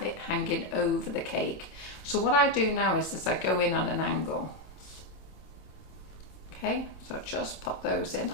it hanging over the cake. So what I do now is I go in on an angle. Okay, so just pop those in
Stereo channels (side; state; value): right; late; 27 ms